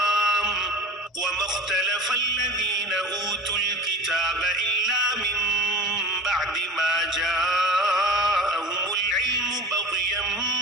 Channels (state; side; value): normal; both; correlation 0.35